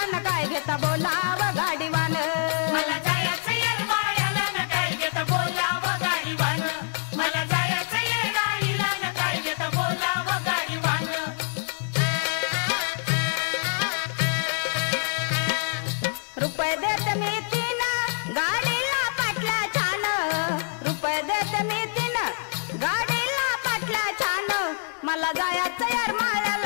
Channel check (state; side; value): silent; right; digital silence